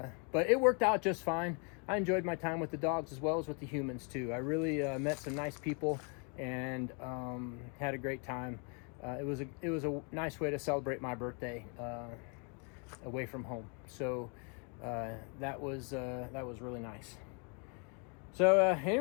it worked out just fine. I enjoyed my time with the dogs as well as with the humans too. I really met some nice people and had a great time. It was a nice way to celebrate my birthday away from home. So that was really nice. So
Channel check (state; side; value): quieter; right; 37.0 dB